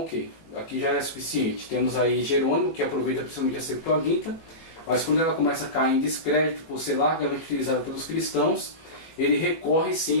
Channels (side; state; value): right; late; 18 ms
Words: ok, aqui já é suficiente. Temos aí Jerônimo, que aproveita principalmente a Septuaginta, mas quando ela começa a cair em descrédito por ser largamente utilizada pelos cristãos, ele recorre